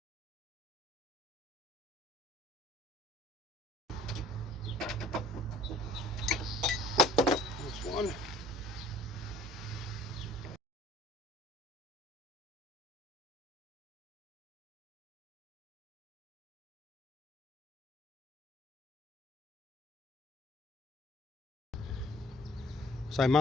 There's one. So I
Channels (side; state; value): both; normal; correlation 0.54